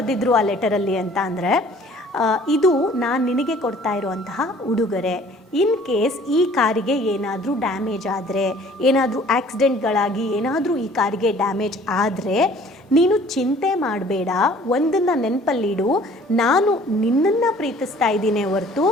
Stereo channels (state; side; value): normal; both; correlation 0.53